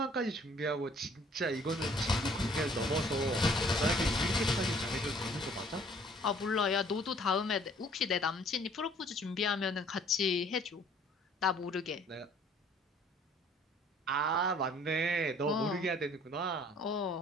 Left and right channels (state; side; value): normal; both; correlation 0.56